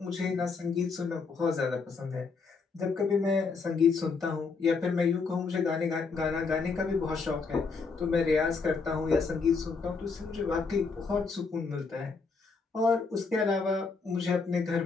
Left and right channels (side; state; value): right; quieter; 4.7 dB